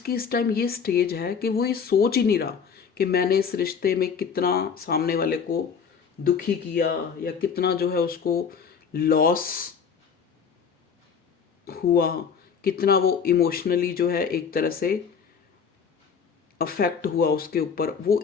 इस टाइम ये स्टेज है कि वो ये सोच ही नहीं रहा कि मैंने इस रिश्ते में कितना सामने वाले को दुखी किया या कितना जो है उसको लॉस हुआ, कितना वो इमोशनली जो है एक तरह से अफेक्ट हुआ उसके ऊपर। वो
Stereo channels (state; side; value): quieter; right; 6.5 dB